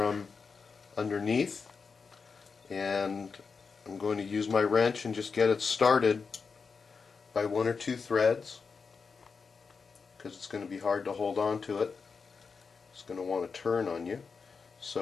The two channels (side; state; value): right; quieter; 5.2 dB